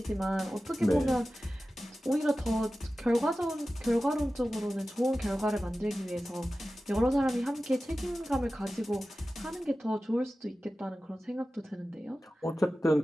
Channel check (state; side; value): normal; both; correlation 0.95